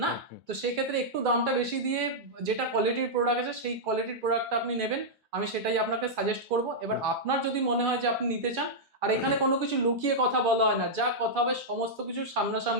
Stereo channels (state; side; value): normal; both; correlation -0.07